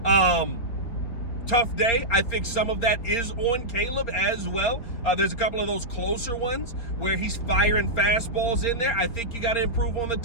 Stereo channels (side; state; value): right; late; 4.3 ms